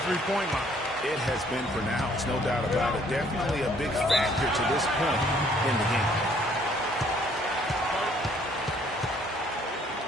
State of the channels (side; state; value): both; normal; correlation 0.62